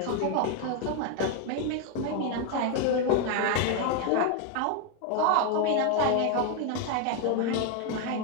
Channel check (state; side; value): different; both; correlation 0.01